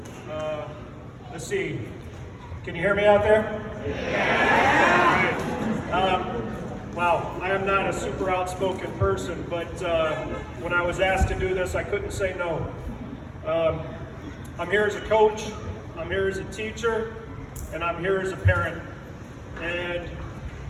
Let's see. Can you hear me out there? Wow, I am not a super outspoken person, but when I was asked to do this, I couldn't say no. I'm here as a coach, I'm here as a teacher, and I'm here as a parent. And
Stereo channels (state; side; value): identical; both; correlation 1.00